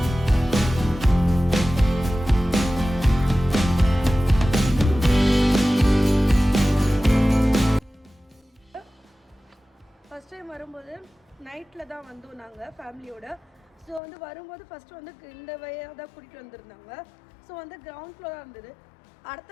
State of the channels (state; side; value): drops out; right; at 14.0 s